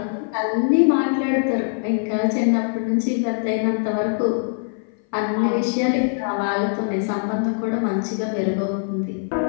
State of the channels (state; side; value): silent; right; 58 dB below the other